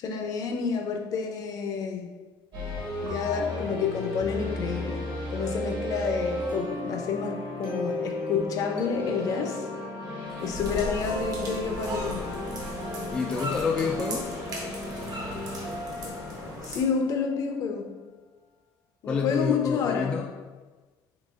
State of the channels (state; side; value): quieter; right; 4.1 dB